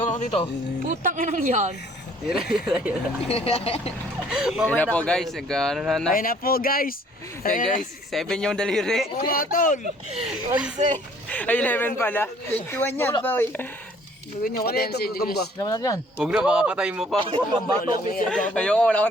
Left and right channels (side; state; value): both; normal; correlation 0.58